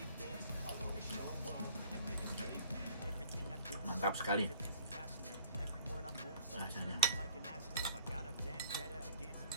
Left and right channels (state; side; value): inverted; both; correlation -0.53